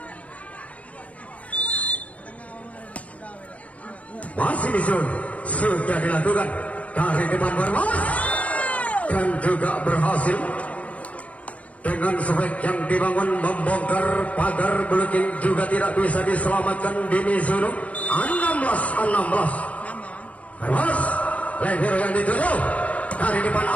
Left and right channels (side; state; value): right; late; 0.066 ms